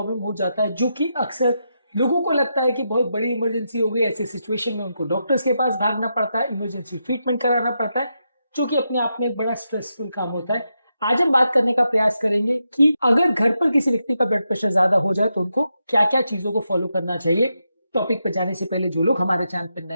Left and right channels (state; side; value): inverted; both; correlation -0.85